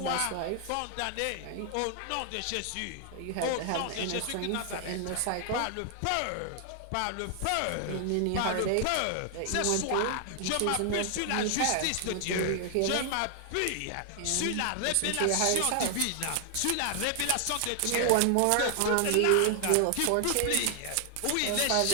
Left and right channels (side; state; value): both; different; correlation 0.00